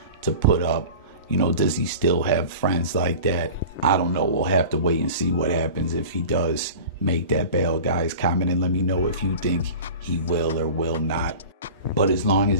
to put up. Does he still have friends like that? I don't know. We'll have to wait and see what happens if he does make that bail. Guys, comment and let me know if you think he will or will not. But as long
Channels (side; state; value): both; inverted; correlation -0.37